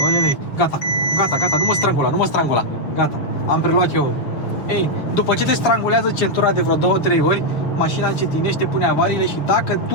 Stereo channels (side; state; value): right; late; 6.6 ms